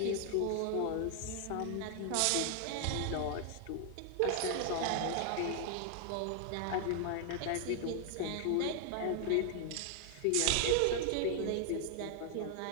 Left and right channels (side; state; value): both; different; correlation 0.00